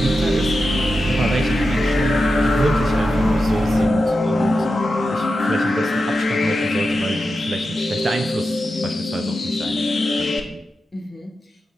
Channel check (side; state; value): both; normal; correlation 0.90